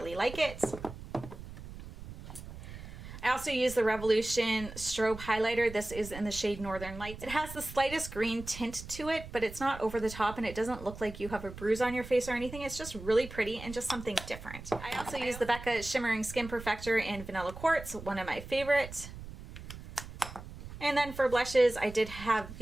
like it. I also use the Revolution Strobe Highlighter. This is in the shade Northern Lights. It has the slightest green tint to it, but it's not over the top and it doesn't look like you have a bruise on your face or anything. It's just really pretty and just something different. I also use the Becca Shimmering Skin Perfector in Vanilla Quartz, one of my favorites. And then for blushes, I did have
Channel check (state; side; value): noise; right; rumble, 13 dB below the sound